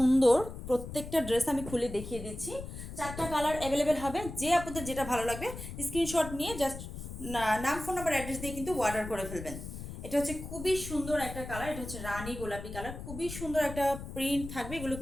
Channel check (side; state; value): left; noise; rumble, 10 dB below the sound